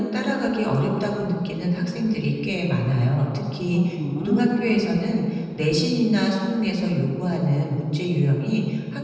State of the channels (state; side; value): identical; both; correlation 1.00